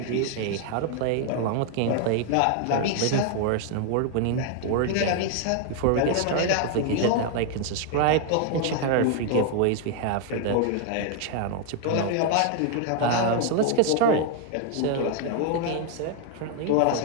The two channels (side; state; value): both; different; correlation 0.00